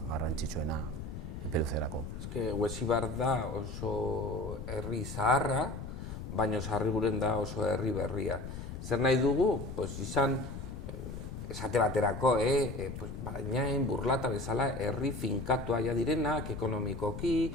garrantzitsuena epeluzerako. Huesibar da oso herri zaharra, baina Sarriguren da oso herri berria. Zer nahi dugu, izan, esate baterako, Barainain, Burlata bezala, herri finkatua direnak, ekonomikoki,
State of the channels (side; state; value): left; noise; rumble, 8 dB below the sound